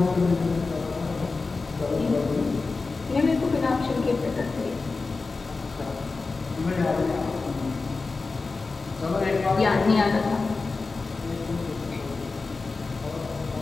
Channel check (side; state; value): right; quieter; 4.0 dB